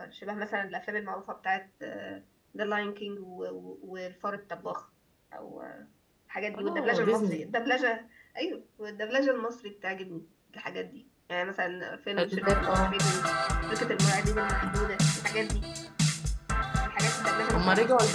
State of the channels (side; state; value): both; identical; correlation 1.00